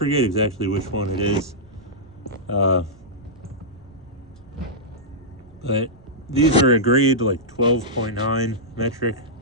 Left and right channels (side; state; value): right; noise; rumble, 25 dB below the sound